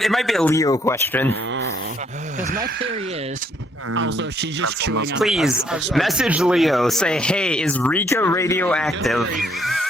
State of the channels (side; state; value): both; normal; correlation 0.68